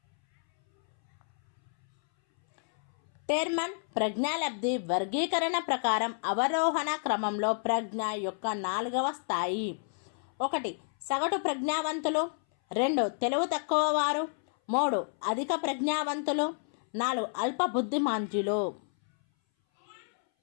టెర్మన్ ప్రజ్ఞాలబ్ధి వర్గీకరణ ప్రకారం అవరోహణ క్రమంలో ప్రజ్ఞ యొక్క 4వ స్థాయి. 1. సగటు ప్రజ్ఞావంతులు. 2. తెలివి తక్కువ వారు. 3. అధిక ప్రజ్ఞావంతులు. 4. అల్ప బుద్ధిమాంద్యులు.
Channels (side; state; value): right; silent; 58 dB below the other